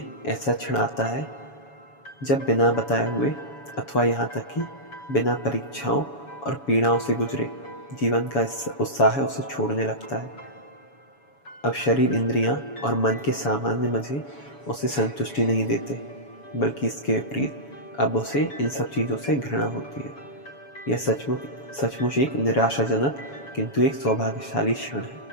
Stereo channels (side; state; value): right; late; 7.1 ms